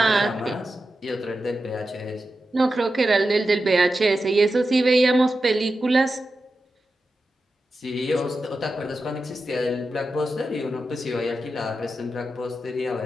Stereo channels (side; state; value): both; normal; correlation 0.91